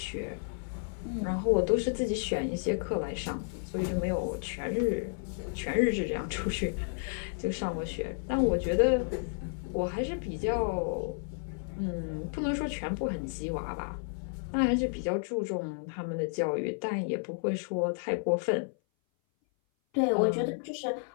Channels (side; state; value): right; silent; 57 dB below the other